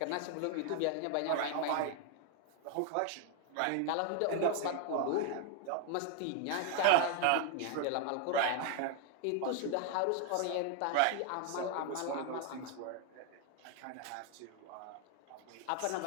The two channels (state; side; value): different; both; correlation 0.01